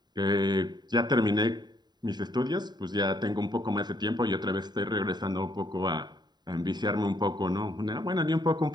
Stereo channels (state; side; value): late; left; 0.20 ms